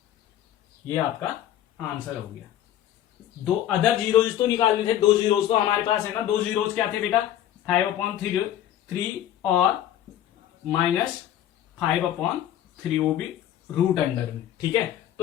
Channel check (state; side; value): quieter; right; 11.6 dB